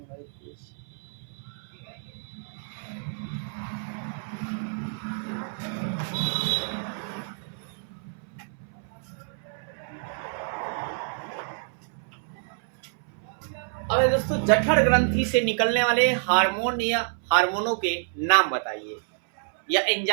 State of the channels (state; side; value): silent; left; 60 dB below the other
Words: अब दोस्तों, जठर ग्रंथि से निकलने वाले हार्मोन या हार्मोनों के नाम बताइए, या